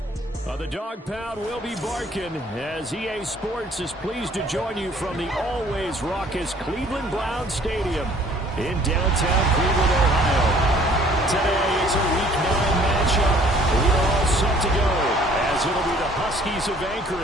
The dog pound will be barking as EA Sports is pleased to join you from the always raucous Cleveland Browns Stadium in downtown Cleveland, Ohio. Today it's a Week 9 matchup. We're all set to go as it'll be the Huskies of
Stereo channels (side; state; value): both; normal; correlation 0.56